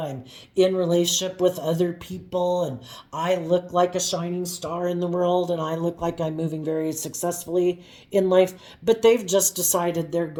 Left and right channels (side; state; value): both; identical; correlation 1.00